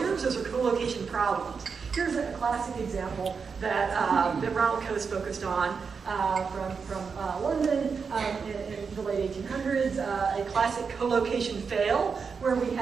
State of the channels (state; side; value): quieter; left; 5.6 dB